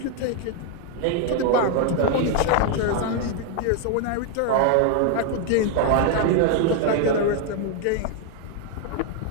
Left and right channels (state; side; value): different; both; correlation 0.00